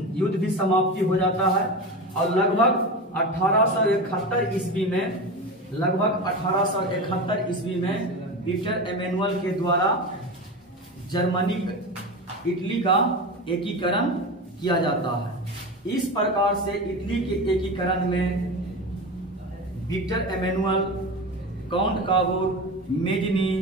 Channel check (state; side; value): normal; both; correlation 0.25